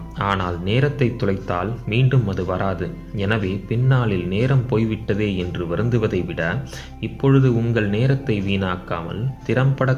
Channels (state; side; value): identical; both; correlation 1.00